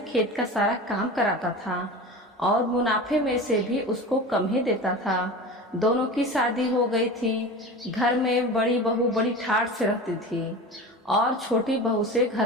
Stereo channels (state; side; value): normal; both; correlation 0.32